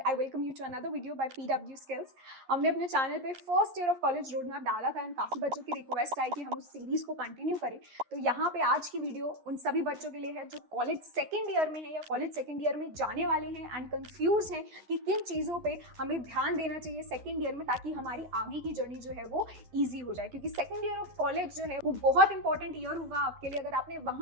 I welcome you to another video by PW skills. हमने अपने चैनल पे first year of college road map डाला था एंड काफ़ी बच्चों की रिक्वेस्ट आई कि हम उस सीरीज को कंटिन्यू करें। तो यहाँ पे आज की वीडियो उन सभी बच्चों के लिए है जो कॉलेज सेकेंड ईयर में है या कॉलेज सेकेंड ईयर में जाने वाले हैं एंड कंफ्यूज हैं कि किन चीज़ों पर हमें ध्यान देना चाहिए सेकेंड ईयर में, ताकि हमारी आगे की जर्नी जो है वो ईजी हो जाए। क्योंकि सेकेंड ईयर ऑफ कॉलेज जो है वो बहुत इंपॉर्टेंट ईयर होगा आपके लिए। अगर आपने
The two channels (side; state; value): left; late; 11 ms